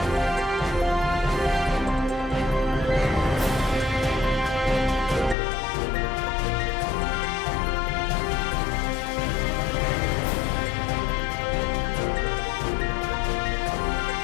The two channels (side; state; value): right; drops out; at 5.4 s